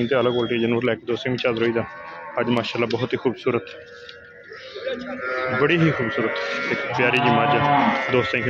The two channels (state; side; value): identical; both; correlation 1.00